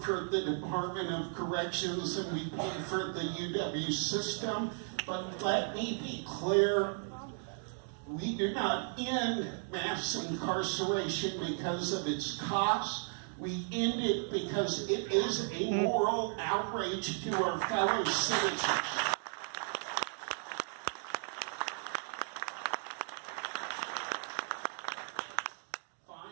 the Department of Corrections than we pay for the UW system, but let me be clear, we do not end mass incarceration because of its cost. We end it because it is a moral outrage to our fellow citizens.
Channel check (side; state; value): left; silent; 54 dB below the other